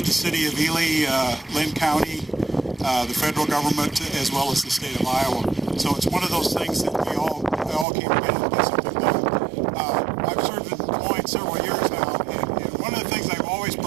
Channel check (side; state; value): left; drops out; at 7.9 s